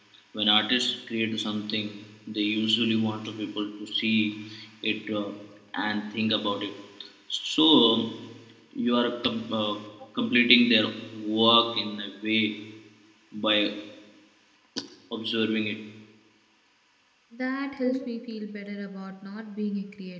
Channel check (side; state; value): both; identical; correlation 1.00